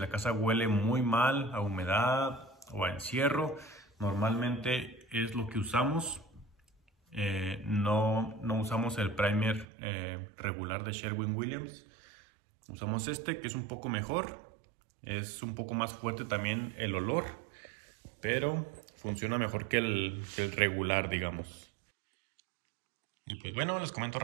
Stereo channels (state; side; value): drops out; left; at 9.7 s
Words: casa huele muy mal a humedad o a encierro, normalmente es lo que usamos. No usamos el primer regular de Sherwin-Williams. Usamos este, que es un poco mejor. Es un poco más fuerte también el olor, pero funciona mejor que el regular, digamos. Y pues bueno, les comento